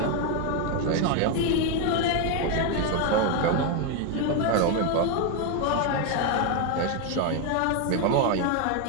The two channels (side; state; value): both; different; correlation 0.01